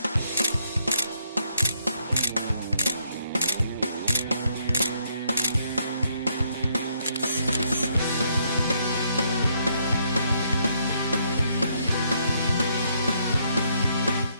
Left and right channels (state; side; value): inverted; both; correlation -0.72